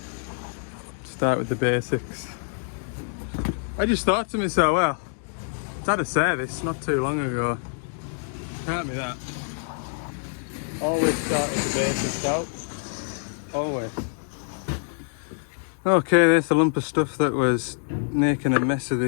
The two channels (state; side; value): silent; right; digital silence